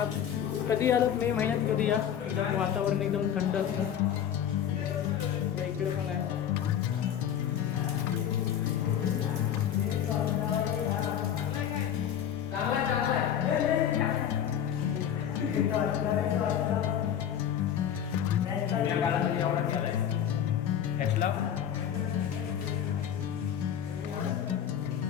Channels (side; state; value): right; quieter; 9.4 dB